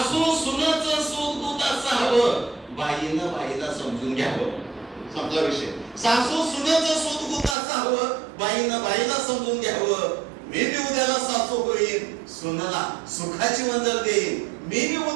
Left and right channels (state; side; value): drops out; left; at 7.6 s